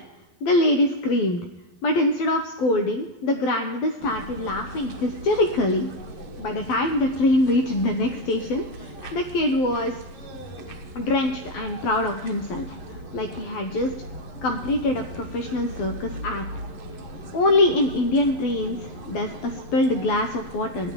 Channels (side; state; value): right; late; 12 ms